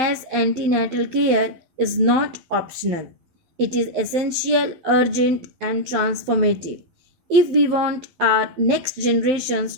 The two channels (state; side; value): late; left; 12 ms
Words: antenatal care is not optional. It is essential, urgent, and transformative. If we want our next generations